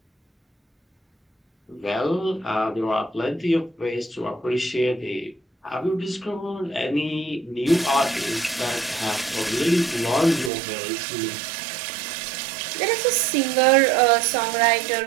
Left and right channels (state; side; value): drops out; left; at 10.5 s